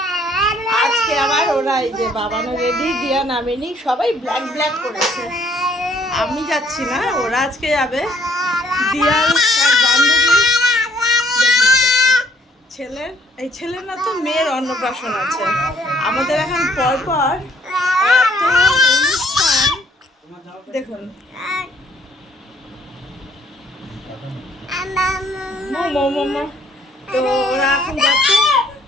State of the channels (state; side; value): normal; both; correlation 0.64